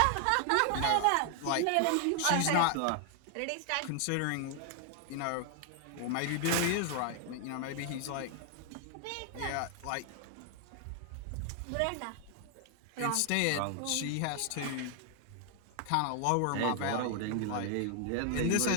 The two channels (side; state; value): both; different; correlation 0.00